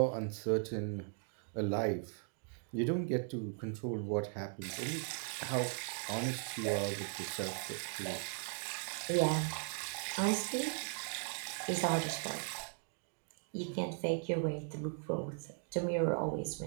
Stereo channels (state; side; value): silent; left; 52 dB below the other